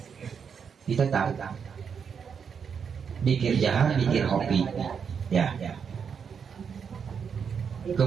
Kita tahu zikir jahar, zikir hobi, ya.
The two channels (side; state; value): left; quieter; 6.7 dB